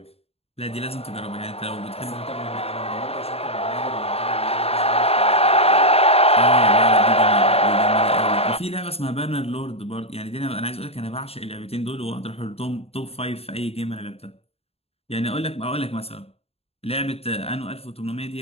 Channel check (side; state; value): right; late; 0.29 ms